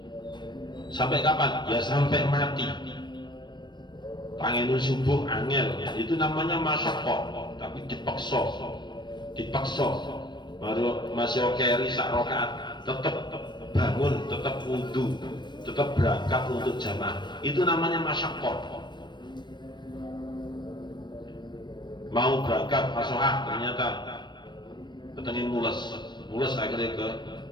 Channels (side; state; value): right; late; 0.22 ms